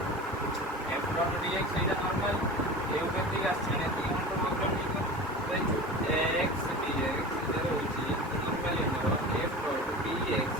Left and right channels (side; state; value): both; normal; correlation 0.33